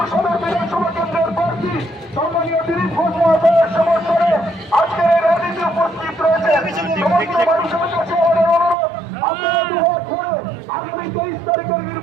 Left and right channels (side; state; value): left; drops out; at 8.8 s